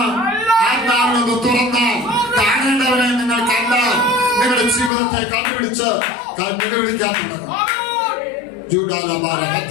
ആത്മാവിനൊന്ന് തുറന്നാൽ കാണേണ്ടവരെ നിങ്ങൾ കണ്ടാൽ നിങ്ങളുടെ ജീവിതത്തെ കണ്ടുപിടിച്ച് നിലവിളിക്കാൻ തുടങ്ങും.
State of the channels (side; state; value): right; drops out; at 4.9 s